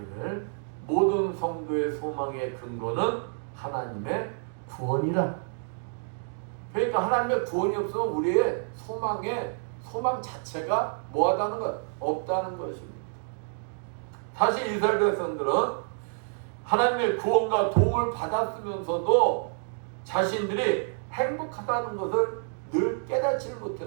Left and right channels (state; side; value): silent; left; digital silence